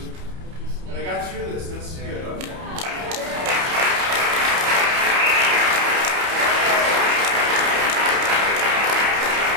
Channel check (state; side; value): late; left; 30 ms